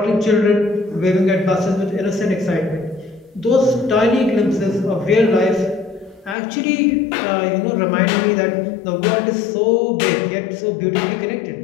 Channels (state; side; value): drops out; right; at 6.4 s